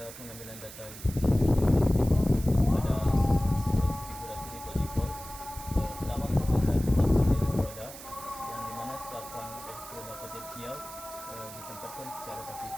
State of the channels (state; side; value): noise; right; hiss, 14 dB below the sound